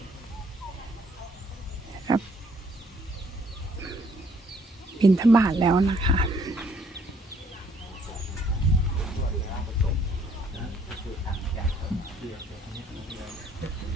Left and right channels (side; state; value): both; normal; correlation 0.64